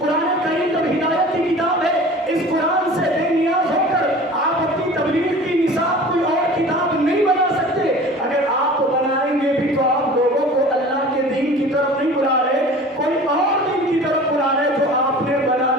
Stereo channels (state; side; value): normal; both; correlation 0.42